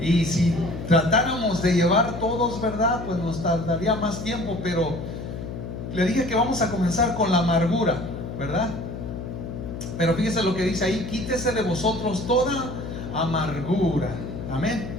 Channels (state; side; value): noise; left; hum, 8 dB below the sound